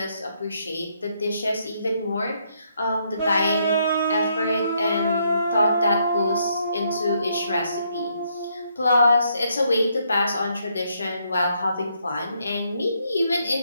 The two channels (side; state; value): both; inverted; correlation -0.74